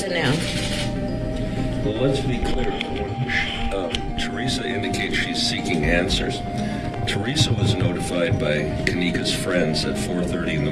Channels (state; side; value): identical; both; correlation 1.00